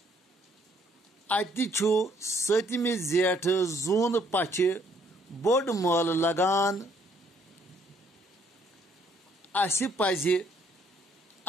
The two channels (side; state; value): both; normal; correlation 0.65